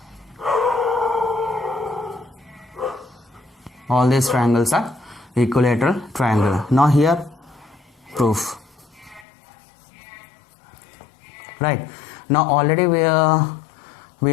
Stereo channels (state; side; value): drops out; right; at 9.2 s